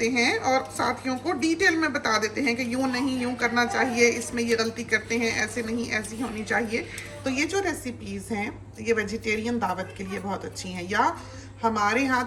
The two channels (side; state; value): both; identical; correlation 1.00